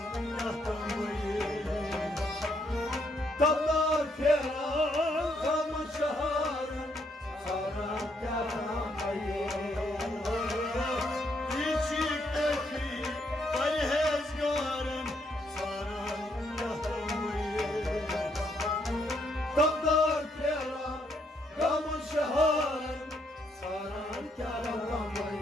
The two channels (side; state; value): both; normal; correlation 0.73